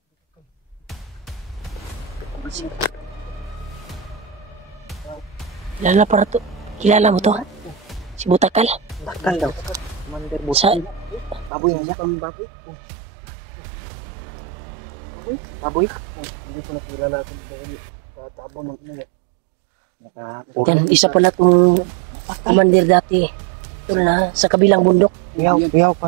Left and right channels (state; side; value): drops out; left; at 11.5 s